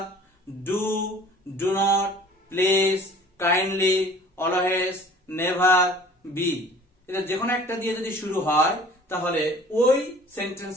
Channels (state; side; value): normal; both; correlation 0.49